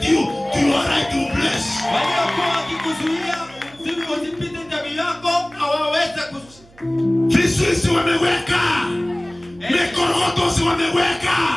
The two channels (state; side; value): noise; right; hum, 26 dB below the sound